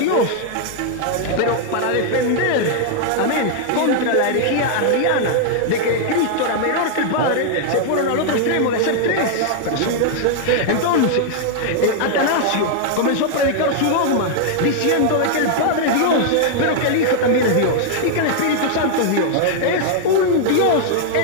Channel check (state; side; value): different; both; correlation -0.01